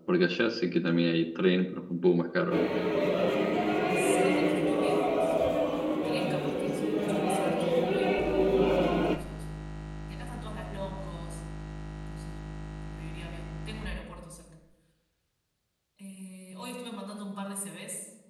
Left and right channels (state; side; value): identical; both; correlation 1.00